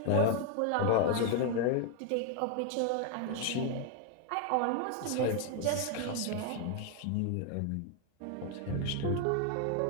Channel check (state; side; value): different; both; correlation 0.00